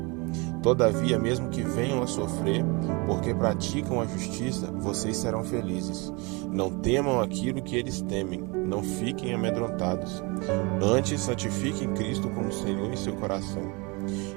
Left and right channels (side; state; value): left; quieter; 28.2 dB